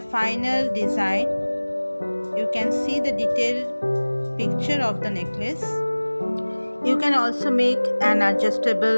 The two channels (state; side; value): inverted; both; correlation -1.00